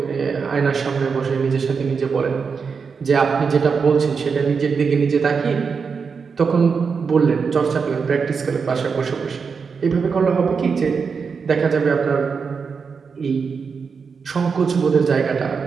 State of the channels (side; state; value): left; quieter; 5.5 dB